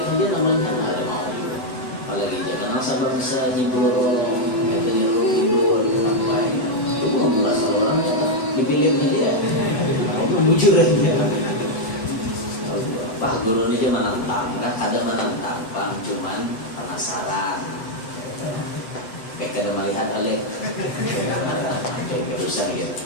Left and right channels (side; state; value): right; late; 8.1 ms